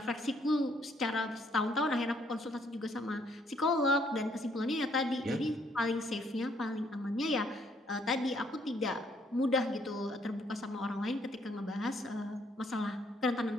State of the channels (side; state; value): both; normal; correlation 0.68